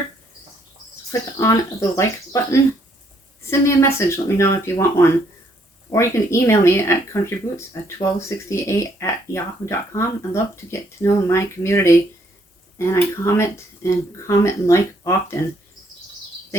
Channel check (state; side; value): normal; both; correlation 0.69